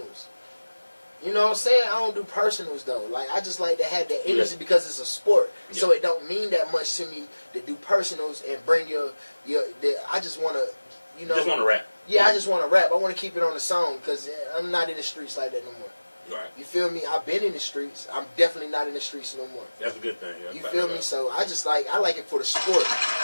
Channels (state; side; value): inverted; both; correlation -1.00